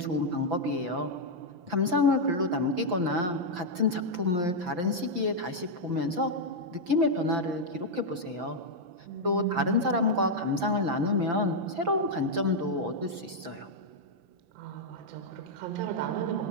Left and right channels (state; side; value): late; left; 5.9 ms